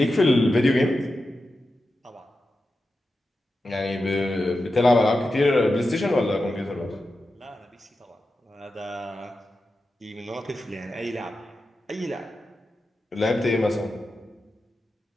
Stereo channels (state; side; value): normal; both; correlation 0.91